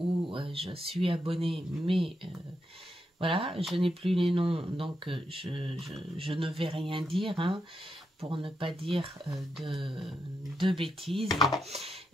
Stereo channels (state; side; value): normal; both; correlation 0.83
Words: je suis abonnée, mais Voilà, je n'ai plus les noms, donc je ne vais rien dire, hein, pour ne pas dire de bêtises.